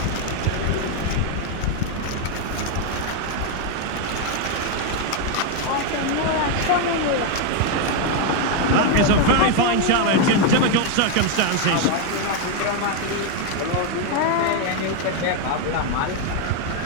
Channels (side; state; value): both; different; correlation 0.01